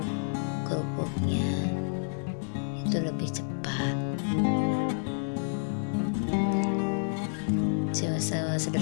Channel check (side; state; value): right; silent; digital silence